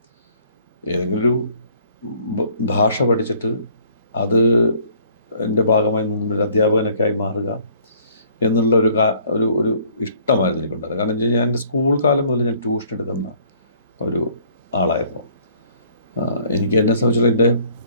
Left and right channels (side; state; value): both; inverted; correlation -0.59